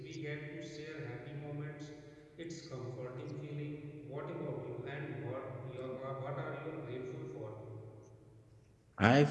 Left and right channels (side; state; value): both; identical; correlation 1.00